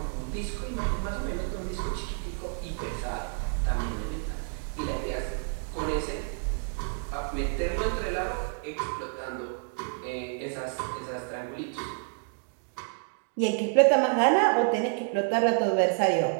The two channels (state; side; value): silent; left; 58 dB below the other